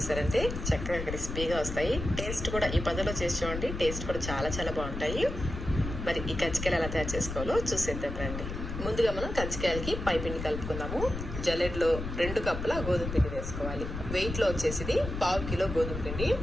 చక్కగా క్రిస్పీగా వస్తాయి. టేస్ట్ కూడా ఈ పద్ధతిలో చేసి చూడండి, టేస్ట్ కూడా చాలా చాలా బాగుంటాయి. మరి ఈ కజ్జికాయలు ఎలా తయారు చేసుకోవాలో చూసేద్దాం రండి. ముందుగా మనం కజ్జికాయలకి పై పిండి కలుపుకుందాము. జల్లెడలో 2 కప్పుల గోధుమ పిండి వేసుకోవాలి. వెయిట్లో వచ్చేసి 1/2 కిలో గోధుమ పిండి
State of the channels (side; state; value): left; noise; rumble, 6 dB below the sound